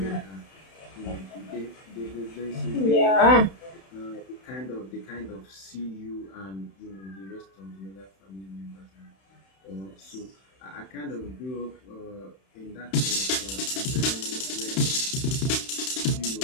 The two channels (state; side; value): late; right; 31 ms